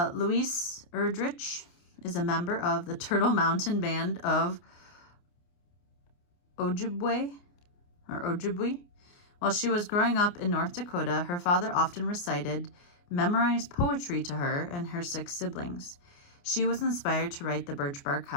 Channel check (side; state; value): right; late; 29 ms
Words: Louise Erdrich is a member of the Turtle Mountain Band of Ojibwe. While she was growing up in North Dakota, her father often recited memorized poetry to her and her 6 siblings. She was inspired to write The Birch Bark